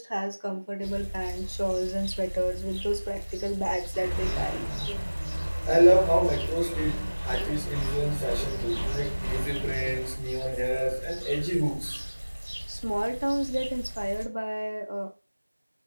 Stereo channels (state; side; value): inverted; both; correlation -1.00